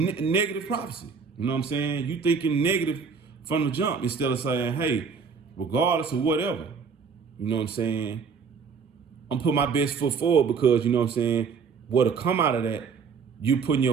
negative prophecy. You know what I'm saying? You thinking negative from the jump instead of saying, hey, regardless of whatever, you know what I'm saying, I'm putting my best foot forward because, you know what I'm saying, what'll come out of that, you putting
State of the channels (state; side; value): quieter; left; 5.6 dB